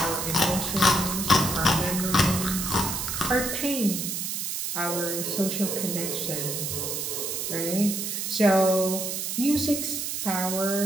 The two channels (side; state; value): right; noise; hiss, 3 dB below the sound